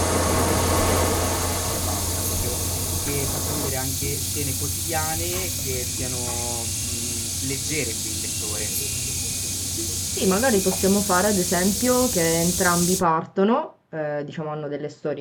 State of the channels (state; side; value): identical; both; correlation 1.00